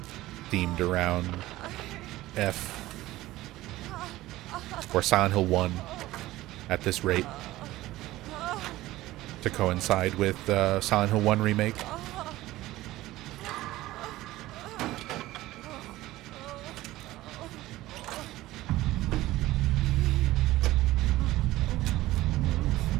themed around F or Silent Hill 1 at this rate to coincide with Silent Hill 1 remake.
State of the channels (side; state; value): left; quieter; 16.8 dB